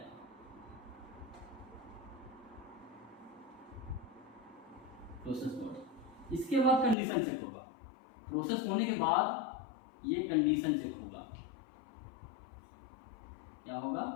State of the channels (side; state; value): right; drops out; at 7.0 s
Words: प्रोसेस बॉडी। इसके बाद कंडीशन चेक होगा, प्रोसेस होने के बाद ये कंडीशन चेक होगा। क्या होगा,